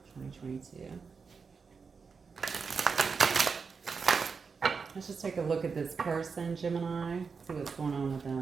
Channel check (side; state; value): left; quieter; 5.3 dB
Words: 2022. Let's just take a look at this person, Gemini. See what's going on with